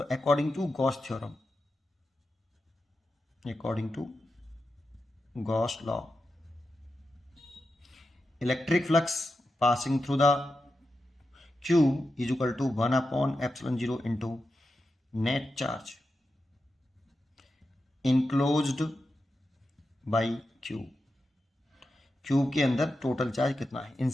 according to Gauss theorem, according to Gauss law, electric flux passing through the Q is equal to 1/ε0 into net charge enclosed by Q। Cube के अंदर total charge कितना है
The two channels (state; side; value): normal; both; correlation 0.90